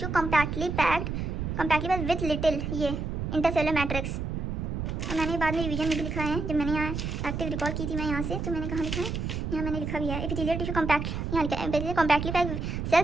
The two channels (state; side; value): noise; right; rumble, 3 dB below the sound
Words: compactly packed with little ये इंटरसेलुलर मैट्रिक्स, और मैंने बाद में रिवीजन में भी लिखा है, जब मैंने यहाँ एक्टिव रिकॉल की थी मैं यहाँ से, तो मैंने कहाँ लिखा है यहाँ मैंने लिखा भी है एपिथेलियल टिश्यू कॉम्पैक्ट, यहाँ लिखा है compactly packed